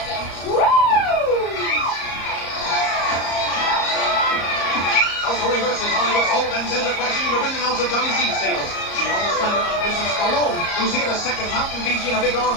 them. Woo! Tulsa reverses Hollywood's hold and sends her crashing into ring announcer Johnny C's tables. She almost landed on Mrs. Stallone, who's here to second Mountain Fiji in a big arm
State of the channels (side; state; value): right; late; 34 ms